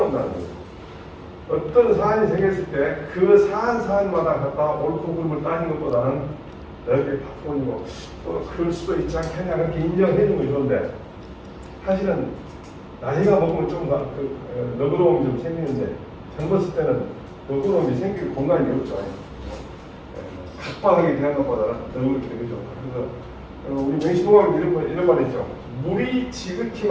거죠. 어떤 사안이 생겼을 때 그 사안마다 갖다 옳고 그름을 따지는 것보다는 넓게 바꾸고 또 그럴 수도 있지 않겠냐 그렇게 인정해 주는 거 좋은데 사실은 나이가 먹으면 좀 너그러움이 좀 생기는데 젊었을 때는 너그러움이 생길 공간이 없죠. 각박하게 대한 것보다는 너그럽게 되죠. 그래서 우리 맹시동학은 이런 말 있죠. 물이 지극히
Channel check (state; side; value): identical; both; correlation 1.00